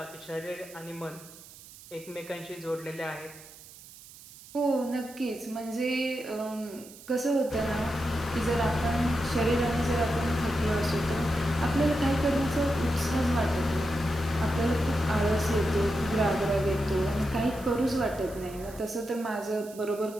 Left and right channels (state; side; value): noise; right; hiss, 19 dB below the sound